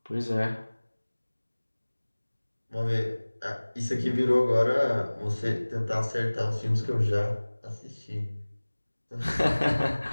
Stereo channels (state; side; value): inverted; both; correlation -1.00